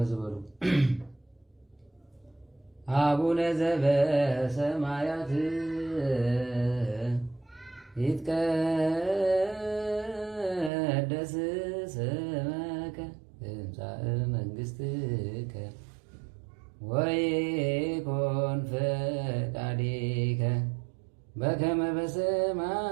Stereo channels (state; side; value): drops out; left; at 10.7 s